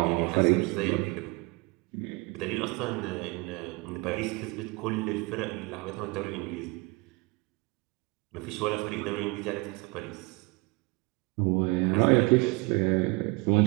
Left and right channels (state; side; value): quieter; left; 27.3 dB